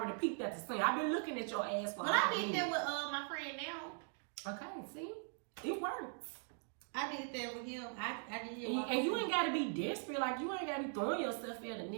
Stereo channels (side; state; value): left; silent; 51 dB below the other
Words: peeked at the scene. I've been looking at your ass for I did that with my friend now. Okay, see? It works. I did that with him. I did. And you ain't gotta be desperate. Like, you ain't gotta be throwing yourself at a